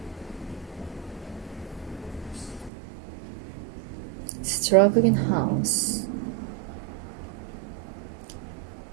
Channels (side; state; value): left; drops out; at 2.7 s